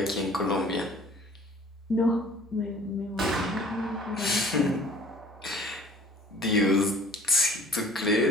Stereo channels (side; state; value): both; normal; correlation 0.50